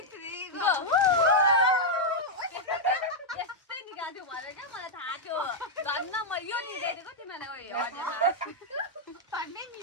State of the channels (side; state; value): both; normal; correlation -0.03